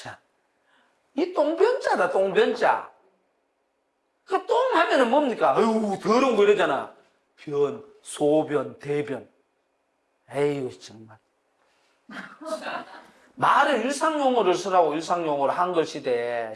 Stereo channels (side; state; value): both; identical; correlation 1.00